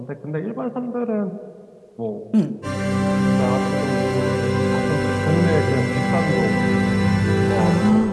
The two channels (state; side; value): identical; both; correlation 1.00